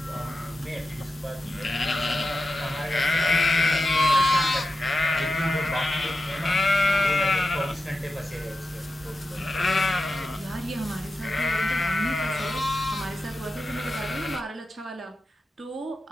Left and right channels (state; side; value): normal; both; correlation 0.89